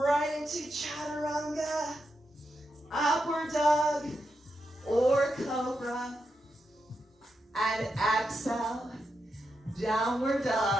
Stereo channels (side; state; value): both; normal; correlation 0.85